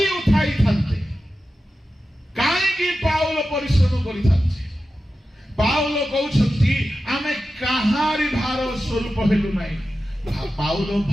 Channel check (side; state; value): both; normal; correlation 0.92